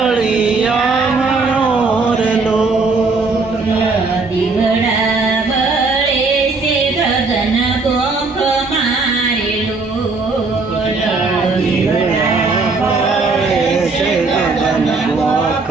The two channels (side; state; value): left; quieter; 3.9 dB